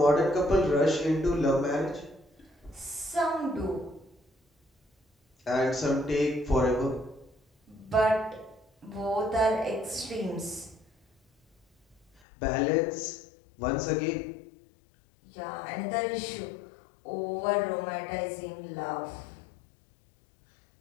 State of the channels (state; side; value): drops out; right; at 12.2 s